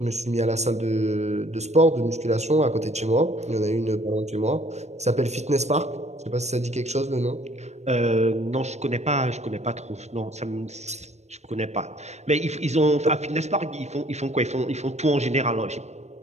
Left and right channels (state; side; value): late; left; 0.32 ms